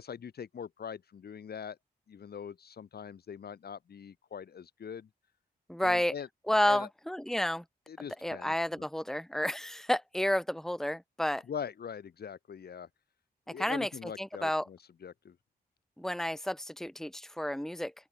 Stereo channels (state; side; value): normal; both; correlation 0.92